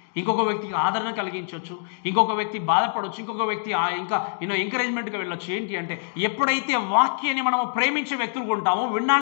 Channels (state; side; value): silent; right; digital silence